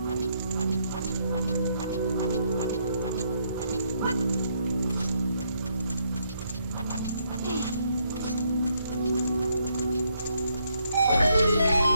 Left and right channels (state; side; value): inverted; both; correlation -0.74